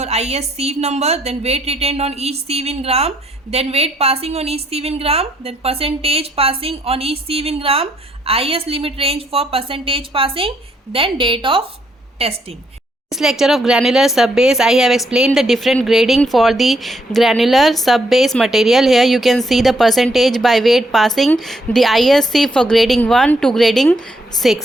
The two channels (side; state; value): both; normal; correlation 0.73